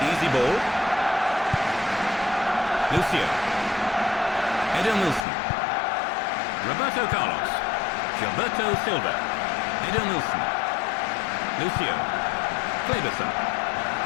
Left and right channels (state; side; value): drops out; right; at 5.2 s